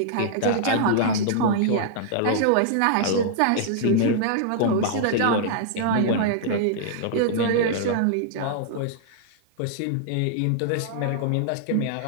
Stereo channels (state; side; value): different; both; correlation -0.01